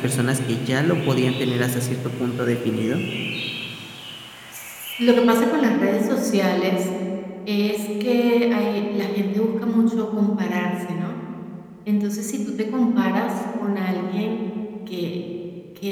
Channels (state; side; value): identical; both; correlation 1.00